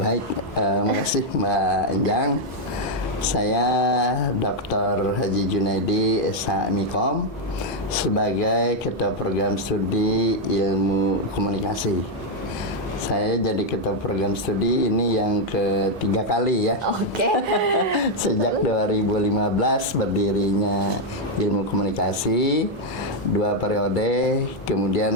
makasih Mbak Enjang. Saya Dr. Haji Junaidi SH Mikom sebagai Ketua Program Studi Ilmu Komunikasi. Saya jadi Ketua Program Studi ini yang ketiga kali ya. Oke. Sejak 2015 berdirinya Ilmu Komunikasi, 2 periode, kemudian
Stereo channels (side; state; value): both; normal; correlation 0.01